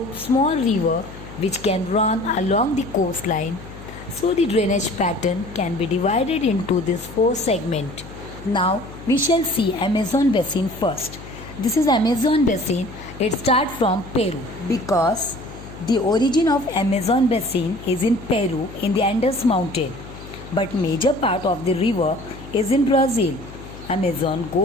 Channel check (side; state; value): left; noise; hum, 15 dB below the sound